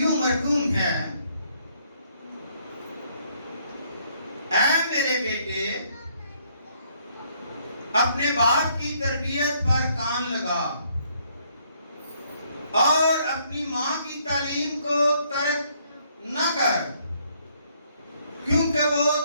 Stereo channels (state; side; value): inverted; both; correlation -0.68